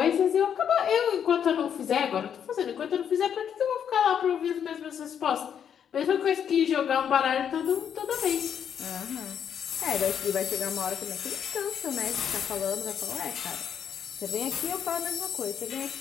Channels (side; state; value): right; quieter; 8.4 dB